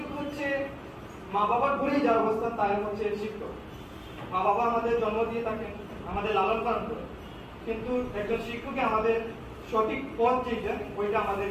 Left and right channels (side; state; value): both; identical; correlation 1.00